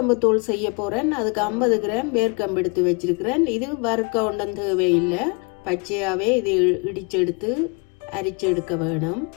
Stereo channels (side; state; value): right; quieter; 32.5 dB